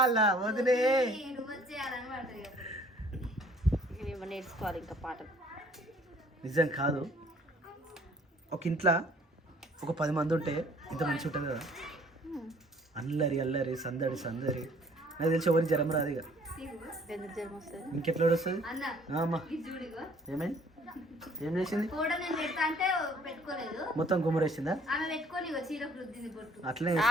వదినే. నేర్చుకోవాలి ఇంకా పాటలు. నిజం కాదు, ఒక ఇంట్లో ఒక 10 మంది ఉంటే ఇంత మంచి ఉంటుంది కదా. అల్లరి అల్లరి సందడి సందడి. నాకు తెలిసి ఎవరికి జ్వరం రాదు ఇక. ఇంకెట్లా వస్తుంది అమ్మా? ఏమైంది? ఏం చేసింది? మొత్తం గుమ్మరేసిందా? అట్లనే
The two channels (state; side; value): normal; both; correlation 0.57